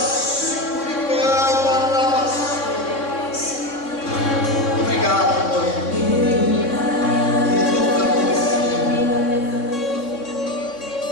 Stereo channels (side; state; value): right; late; 3.6 ms